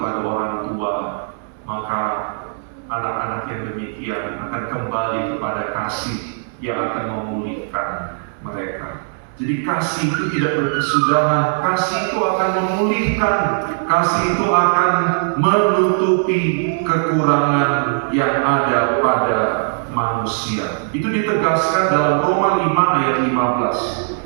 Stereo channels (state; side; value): silent; left; digital silence